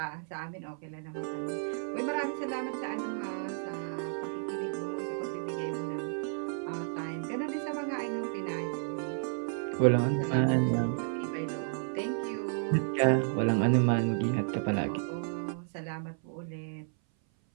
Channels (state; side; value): silent; left; 56 dB below the other